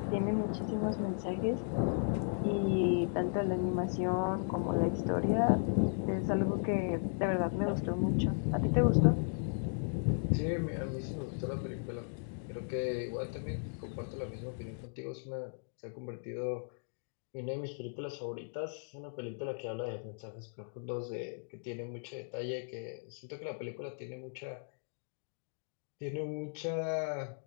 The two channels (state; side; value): silent; right; digital silence